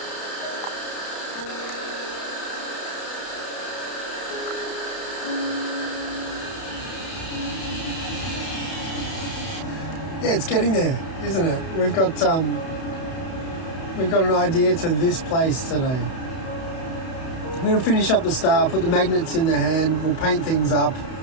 Yeah, it's getting there, isn't it? We've got an idea to this place today. I'm going to finish up the star, put the magnets in the hand, we'll paint things up.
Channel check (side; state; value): right; late; 31 ms